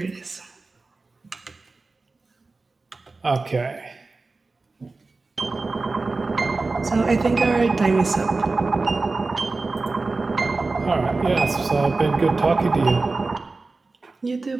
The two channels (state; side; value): quieter; left; 3.7 dB